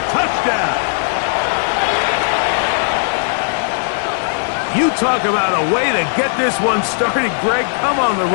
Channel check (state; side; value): silent; right; 68 dB below the other